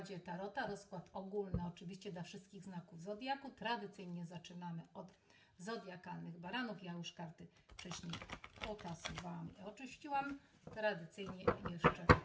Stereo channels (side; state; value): both; identical; correlation 1.00